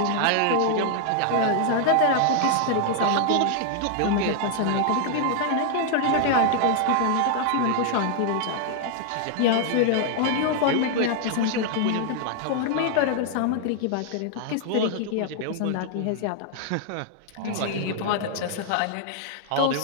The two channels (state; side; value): different; both; correlation 0.00